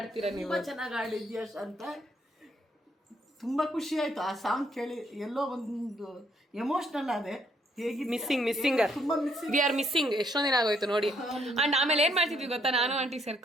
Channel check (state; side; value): normal; both; correlation 0.70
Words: ನೀವು. ತುಂಬ ಚೆನ್ನಾಗಿ ಆಡಿದ್ಯಾ ಅಂತ ತುಂಬ ಖುಷಿ ಆಯಿತು ಆ ಸಾಂಗ್ ಕೇಳಿ. ಎಲ್ಲೋ ಒಂದು ಎಮೋಷ್ನಲ್ ಆದೆ. ಹೇಗೆ ಮಿಸ್ಸಿಂಗರ್ ವಿ ಆರ್ ಮಿಸ್ಸಿಂಗ್. ಎಷ್ಟೊಂದು ದಿನ ಆಗೋಯ್ತು ನೋಡಿ. ಆ್ಯಂಡ್ ಆಮೇಲೆ ಏನು ಮಾಡ್ತಿದ್ವಿ ಗೊತ್ತಾ, ನಾನು ಆಂಟಿ